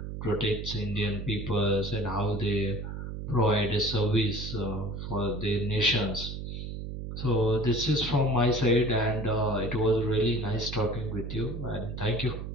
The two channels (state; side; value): noise; right; hum, 7 dB below the sound